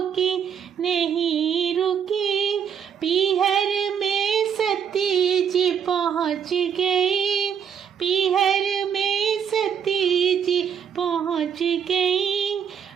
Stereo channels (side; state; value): left; quieter; 7.9 dB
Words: नहीं रुकी। पीहर में सती जी पहुँच गई, पीहर में सती जी पहुँच गई।